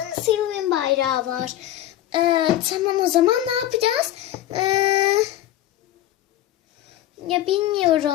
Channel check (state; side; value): quieter; right; 13.2 dB